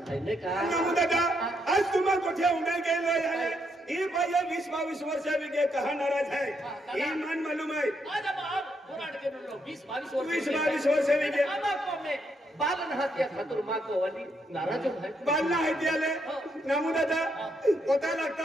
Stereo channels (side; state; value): both; normal; correlation 0.77